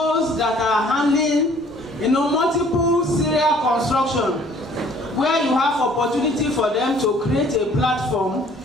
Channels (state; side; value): normal; both; correlation 0.56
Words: that are handling multiple serial construction, where you have opportunity for them to create a platform